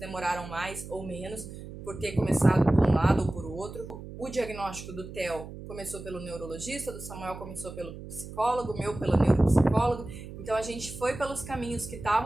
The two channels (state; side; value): noise; right; hum, 12 dB below the sound